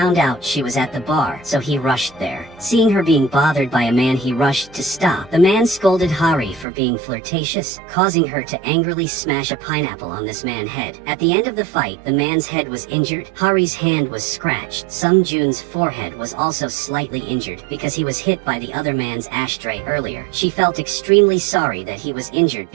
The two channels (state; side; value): drops out; left; at 6.7 s